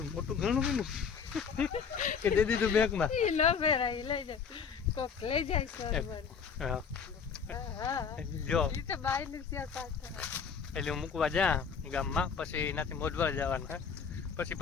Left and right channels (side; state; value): right; quieter; 6.4 dB